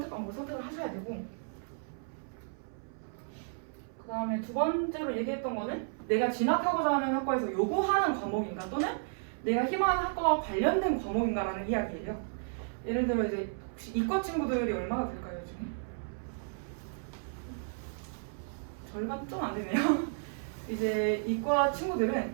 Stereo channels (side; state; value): left; silent; 56 dB below the other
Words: 과목을 선택을 하셔야 되고 그 다음에 두 번째로 얘기했던 거는 내가 진학하고자 하는 학과에서 요구하는 과목인가 또는 내가 희망하는 학과와 관련된 과목인가라는 이야기예요. 예를 들어 이제 혹시 이과 친구들이 얼마나 될까요, 요즘에? 절반 좀 안 되네요. 이제 이과 친구들은